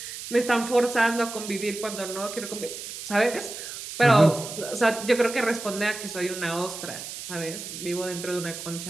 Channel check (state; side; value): noise; right; hiss, 9 dB below the sound